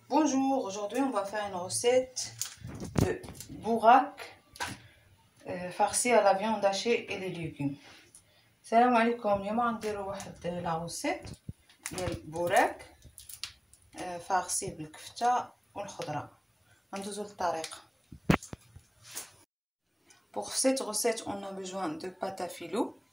Bonjour, aujourd'hui on va faire une recette de bourak farci à la viande hachée et les légumes. Salam alaikum, اليوم غنديرو واحد لا recette ديال بوراك farci بالكفتة والخضرة. غندوزو للطريقة. Pour cette recette, on a besoin de pâte à filou,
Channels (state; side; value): identical; both; correlation 1.00